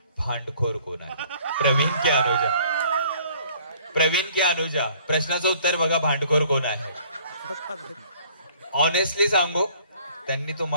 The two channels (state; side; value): inverted; both; correlation -0.57